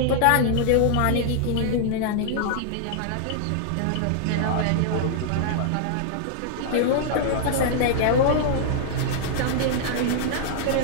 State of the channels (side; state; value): both; different; correlation -0.01